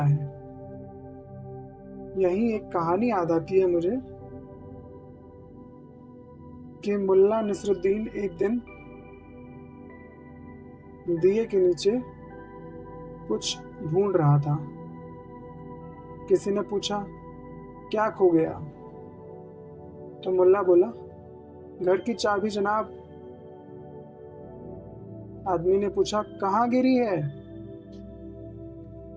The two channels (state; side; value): identical; both; correlation 1.00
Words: है। यही एक कहानी याद आती है मुझे कि मुल्ला नसरुद्दीन एक दिन दिए के नीचे कुछ ढूंढ रहा था। किसी ने पूछा, क्या खो गया? तो मुल्ला बोला, घर की चाबी जनाब। आदमी ने पूछा, कहाँ गिरी है?